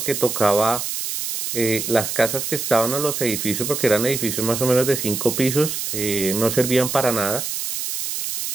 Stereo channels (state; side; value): noise; right; hiss, 4 dB below the sound